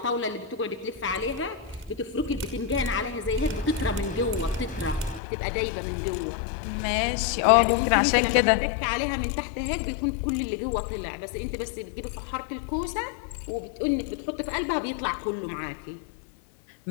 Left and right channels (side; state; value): right; drops out; at 5.2 s